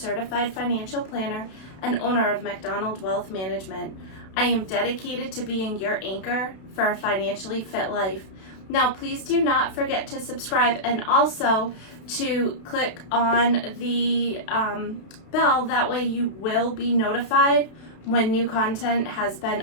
financial planner and owner of MacDonald Wealth Management. I am dedicated to being your anchor for a financially fit life. Now, please do not forget to subscribe and also to click on the bell. That way you will be notified when new content has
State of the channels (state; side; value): late; right; 32 ms